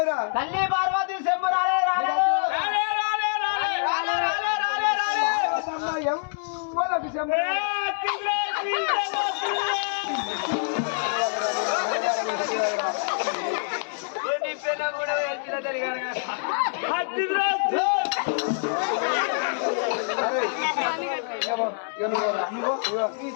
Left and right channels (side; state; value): right; silent; 61 dB below the other